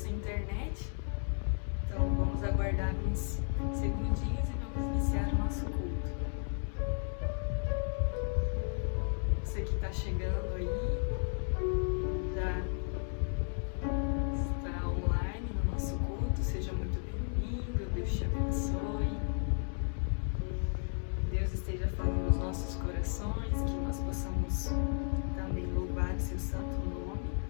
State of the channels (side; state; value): right; silent; 55 dB below the other